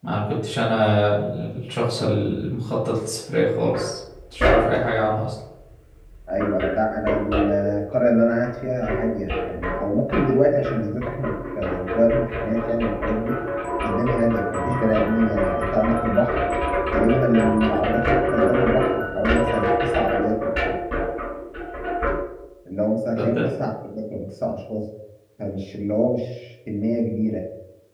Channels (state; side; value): identical; both; correlation 1.00